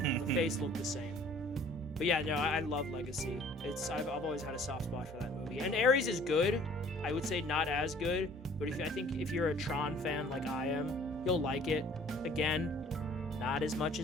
face looked the same. But yeah, no, I love Legacy. I've always had a soft spot for that movie. And Ares is good. I would say not as good, but I think if you're a Tron fan like I am, you'll like it. Again, not as much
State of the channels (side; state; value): both; normal; correlation 0.54